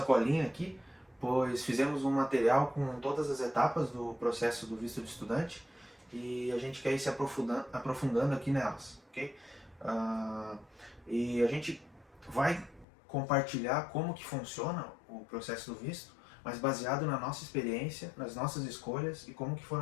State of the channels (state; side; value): drops out; right; at 12.9 s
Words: colinha aqui, pois fizemos um material com todas as etapas do processo do visto de estudante e a gente quer ir se aprofundando aqui nelas, ok? E a gente vai compartilhar como que funciona o processo do visto, mas baseado na nossa experiência, nas nossas escolhas e como que